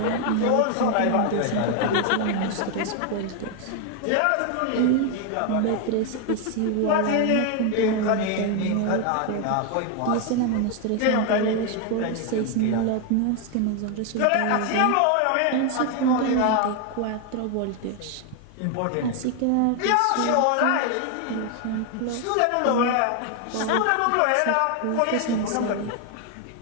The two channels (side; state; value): both; different; correlation 0.01